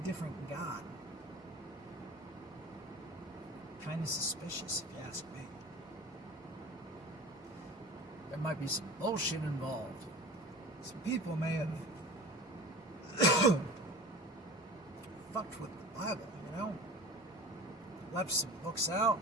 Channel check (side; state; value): both; normal; correlation 0.37